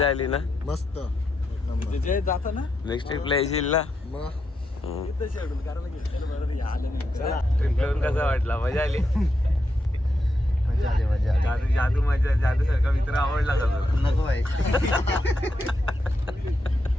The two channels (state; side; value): normal; both; correlation 0.84